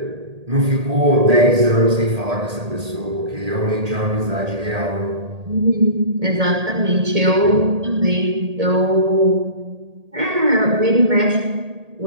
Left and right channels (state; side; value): late; left; 1.8 ms